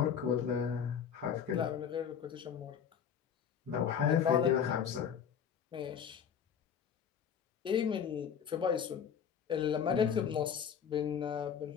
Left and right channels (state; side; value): quieter; right; 7.9 dB